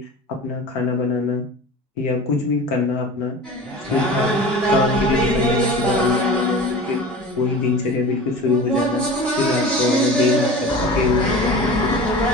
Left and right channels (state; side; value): normal; both; correlation 0.36